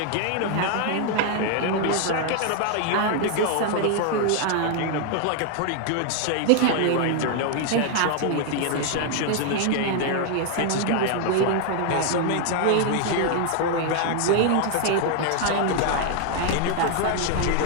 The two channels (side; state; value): both; different; correlation 0.00